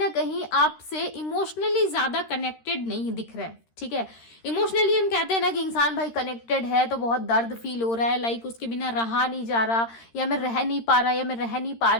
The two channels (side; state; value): right; late; 13 ms